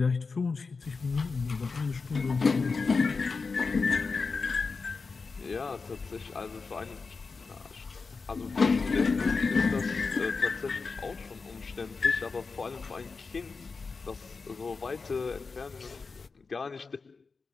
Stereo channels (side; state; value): right; quieter; 4.5 dB